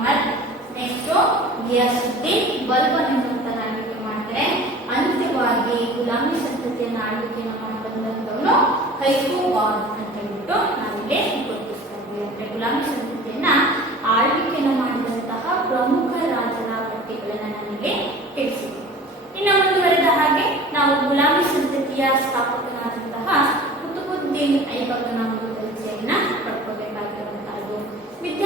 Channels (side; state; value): both; normal; correlation 0.42